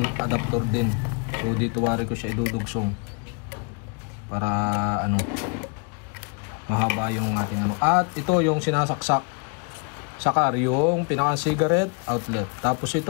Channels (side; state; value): right; quieter; 36.1 dB